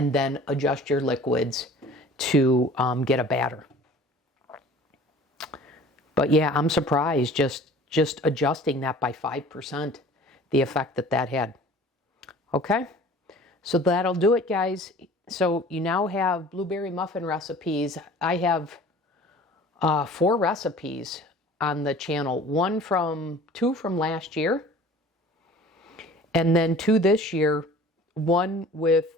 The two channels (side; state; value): both; normal; correlation 0.46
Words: then adjust your liquids to get a batter. But yeah, I'm surprised just adjusting that by 5%, the effect that had. Okay, so that'll do it, guys. So you now have blueberry muffin recipes. I have 4 recipes on the channel. 2 from last year, and then 2 this year. 1 with